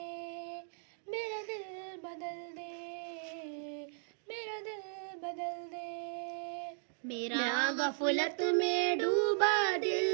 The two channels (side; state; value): left; silent; digital silence